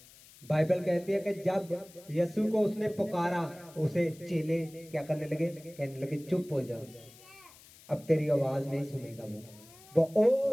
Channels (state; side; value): noise; left; hiss, 23 dB below the sound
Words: बाइबल कहती है कि जब यीशु को उसने पुकारा, उसे चेले क्या करने लगे? कहने लगे चुप हो जाओ, अब तेरी आवाज नहीं सुनेगा। वो